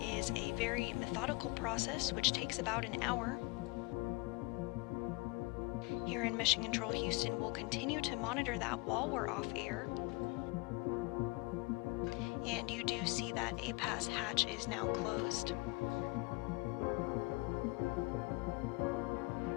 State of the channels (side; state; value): right; quieter; 27.1 dB